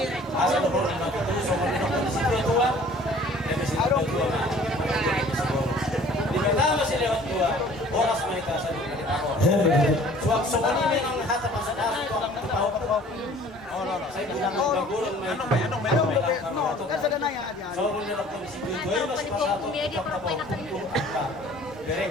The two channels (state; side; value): normal; both; correlation 0.51